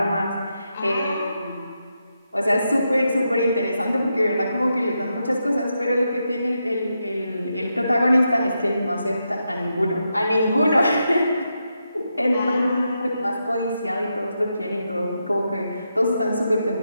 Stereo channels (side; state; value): both; inverted; correlation -0.85